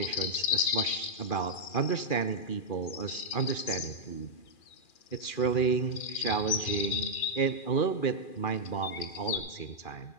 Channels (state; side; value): late; right; 2.4 ms